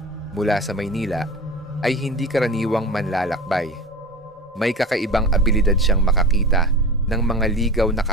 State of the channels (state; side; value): normal; both; correlation 0.33